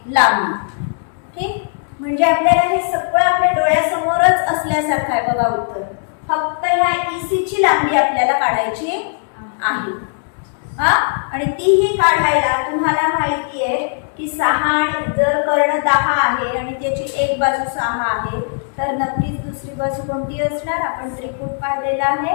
लांबी. ठीक. म्हणजे आपल्याला हे सगळं आपल्या डोळ्यासमोरच असल्यासारखं आहे बघा उत्तर. फक्त ह्या EC ची लांबी आपल्याला काढायची आहे. आणि तीही काढायला तुम्हाला माहिती आहे की 6 आणि जर कर्ण 10 आहे आणि त्याची एक बाजू 6 आहे, तर नक्कीच दुसरी बाजू कोणती असणार, आपण त्रिकूट पाहिलेला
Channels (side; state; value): right; silent; digital silence